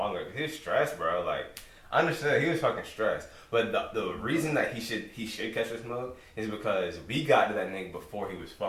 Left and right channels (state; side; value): identical; both; correlation 1.00